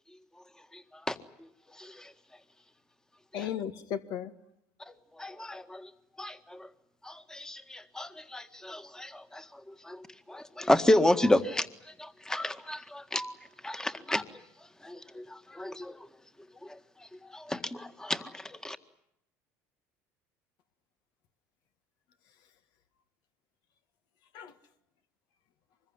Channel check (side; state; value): both; normal; correlation 0.89